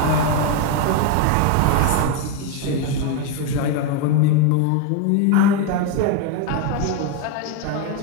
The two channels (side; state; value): both; different; correlation 0.02